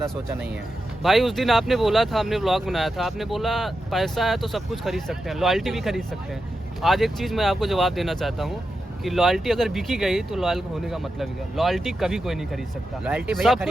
सोचा नहीं है। भाई उस दिन आपने बोला था, हमने व्लॉग बनाया था, आपने बोला पैसा है तो सब कुछ खरीद सकते हैं, लॉयल्टी भी खरीद सकते हैं। आज एक चीज़ मैं आपको जवाब देना चाहता हूँ कि लॉयल्टी अगर बिकी गई तो लॉयल होने का मतलब क्या? लॉयल्टी कभी कोई नहीं खरीद सकता। लॉयल्टी भैया सब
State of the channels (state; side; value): normal; both; correlation 0.89